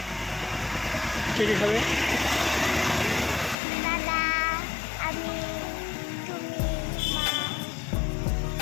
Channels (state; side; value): drops out; right; at 3.6 s